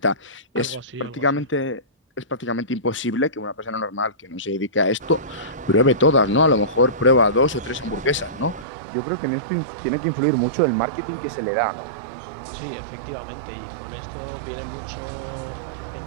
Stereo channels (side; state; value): left; drops out; at 8.7 s